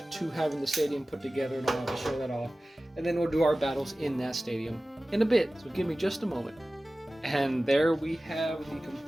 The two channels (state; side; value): normal; both; correlation 0.96